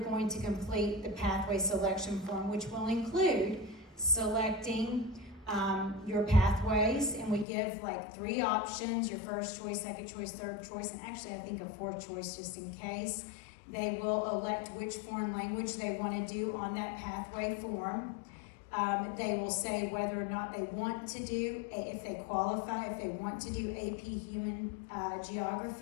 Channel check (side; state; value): right; drops out; at 7.5 s